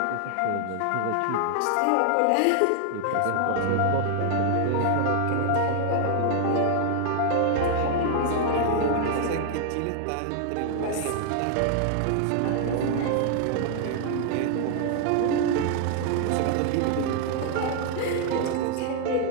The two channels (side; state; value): both; different; correlation 0.00